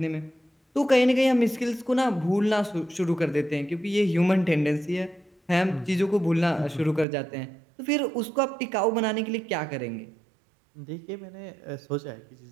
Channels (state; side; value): drops out; left; at 7.1 s